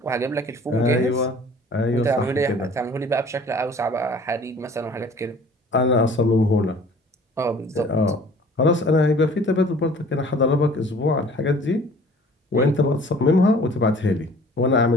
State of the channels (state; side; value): normal; both; correlation 0.50